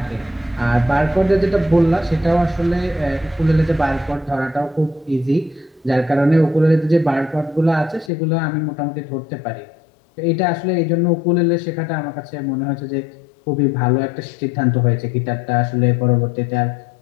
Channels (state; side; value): drops out; right; at 8.1 s